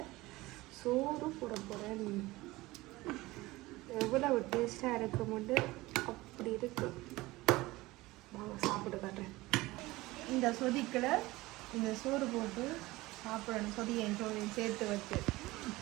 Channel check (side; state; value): left; quieter; 19.7 dB